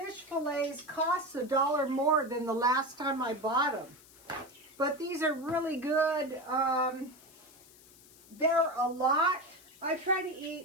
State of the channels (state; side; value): noise; left; hiss, 24 dB below the sound